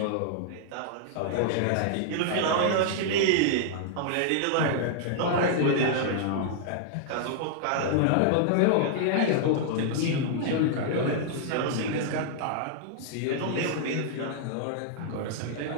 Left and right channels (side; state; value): both; different; correlation -0.01